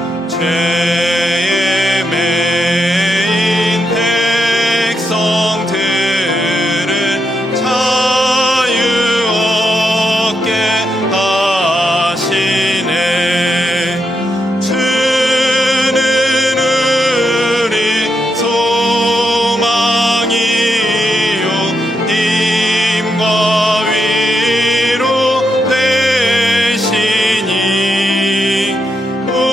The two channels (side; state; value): both; normal; correlation 0.83